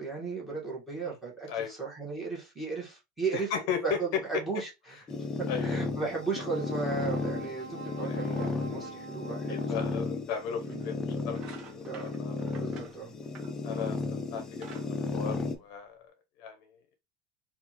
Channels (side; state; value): both; normal; correlation 0.45